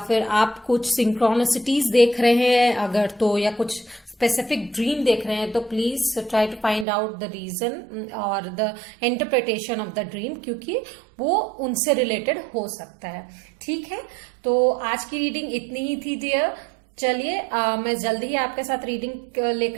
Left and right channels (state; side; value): drops out; left; at 6.9 s